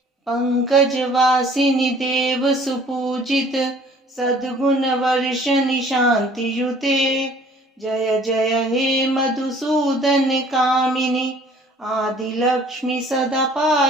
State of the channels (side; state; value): both; normal; correlation 0.54